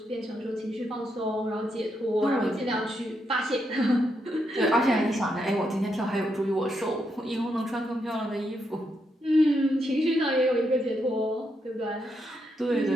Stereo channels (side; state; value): both; normal; correlation 0.80